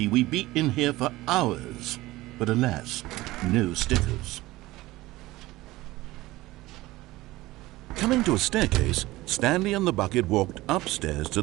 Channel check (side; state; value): left; quieter; 18.4 dB